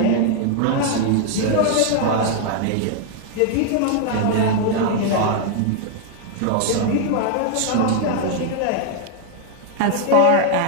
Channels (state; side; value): different; both; correlation 0.00